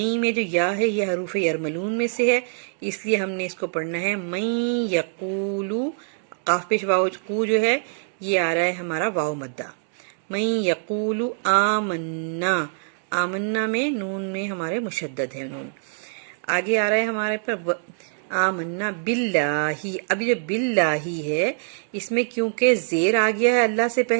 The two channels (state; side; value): silent; left; digital silence